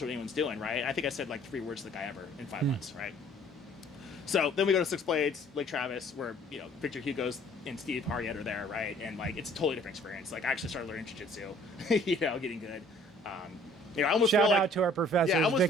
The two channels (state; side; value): normal; both; correlation 0.56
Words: to what anyone's doing, right? I think I said like 3 words to the guy ever in 5 months, right? So then we go to Six Blades, Lake Travis, where, you know, Victor Hugo's and Steve Harriet are there, right? And, like, it's a totally different experience. Like, I actually started learning jiu-jitsu, you know, getting good. You know, I almost Shout feel out like, to our professors, yeah, I almost